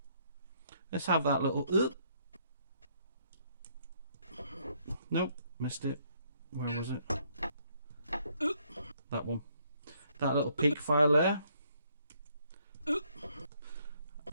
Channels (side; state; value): both; inverted; correlation -0.69